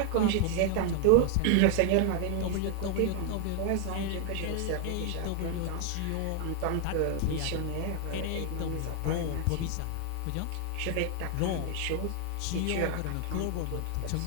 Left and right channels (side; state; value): both; different; correlation 0.00